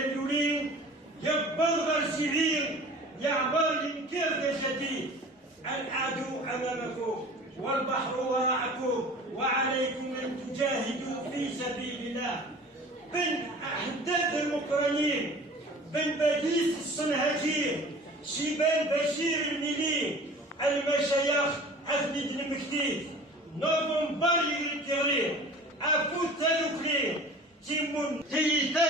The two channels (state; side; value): normal; both; correlation 0.43